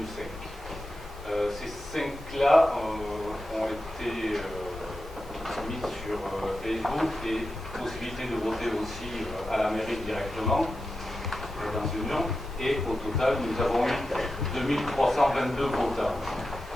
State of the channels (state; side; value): normal; both; correlation 0.91